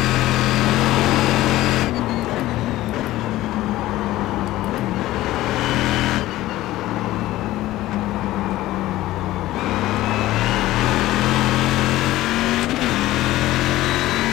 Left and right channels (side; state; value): right; quieter; 16.0 dB